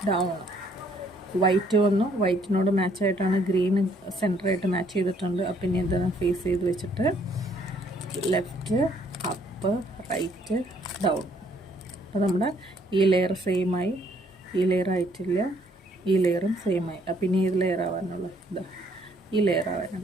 down. White വന്നു, വൈറ്റിനോട് മാച്ചായിട്ടാണ് ഗ്രീൻ സെൻറ്ററായിട്ട് മാച്ച് ചെയ്തിട്ടുണ്ട്. അപ്പം ഇനി എന്താണ് ഫേസ് ചെയ്ത് വെച്ചിട്ട് ലെഫ്റ്റ് അപ്പ് റൈറ്റ് ഡൗൺ. അപ്പോൾ നമ്മുടെ ഈ ലെയർ സെയിമായി, ഈ ലെയർ ആയിട്ടില്ല, ഈ ലെയറും സെയിമായി. അപ്പം ഇനി ഏത് ലെയർ ആവാനുള്ള ഇതാ ഈ ലെയർ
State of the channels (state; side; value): normal; both; correlation 0.65